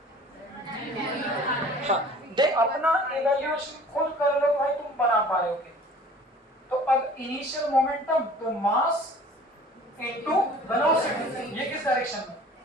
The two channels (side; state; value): both; normal; correlation 0.47